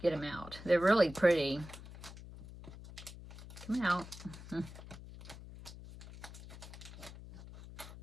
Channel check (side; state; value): left; noise; hum, 14 dB below the sound